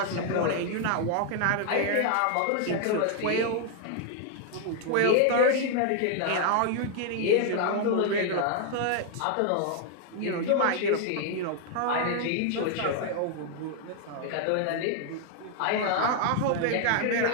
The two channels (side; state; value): both; different; correlation 0.00